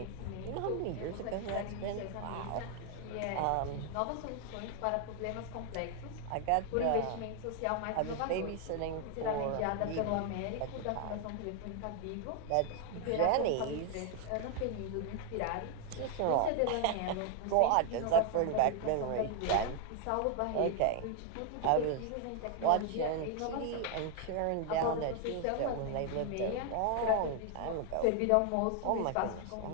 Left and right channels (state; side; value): different; both; correlation 0.00